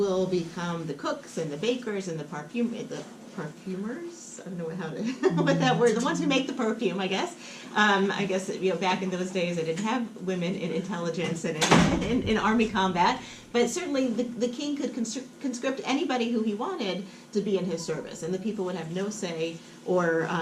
become the cooks and the bakers and the perfumers. I don't know how to what that word. The ones who make the perfume, I guess. I guess back in those days, they didn't have women in intelligence and in army combat. But certainly, the king could conscript anybody who he wanted to be in his service, and the people would have no say or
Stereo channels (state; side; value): identical; both; correlation 1.00